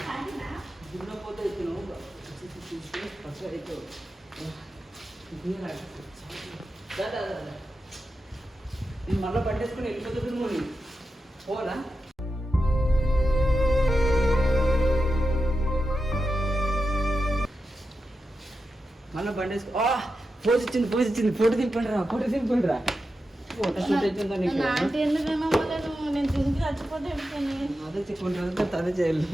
దున్నపోతే నేను మళ్ళీ పట్టేసుకుని వెళ్ళిపోతుంది నువ్వు పోనా? మళ్ళీ బండేసుకో. పోజ్ ఇచ్చింది. ఫోటో దింపండి రా. ఫోటో షూట్ అవుతుందా నీకు? నేను తింటే చచ్చిపోతే అదే చెప్పుకుంటారు, అదే చేయాలి.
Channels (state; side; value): normal; both; correlation 0.89